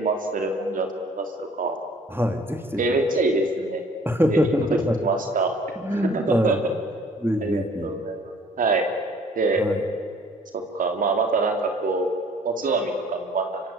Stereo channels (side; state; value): both; normal; correlation 0.54